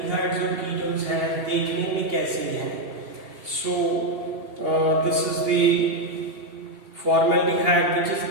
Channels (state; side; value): late; left; 2.7 ms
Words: और ketones हैं देखने में कैसे हैं। So this is the formaldehyde, which is